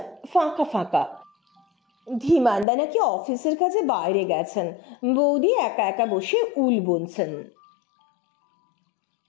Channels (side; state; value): right; drops out; at 2.7 s